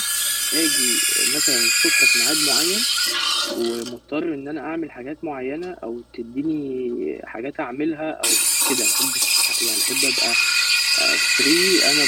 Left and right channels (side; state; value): both; identical; correlation 1.00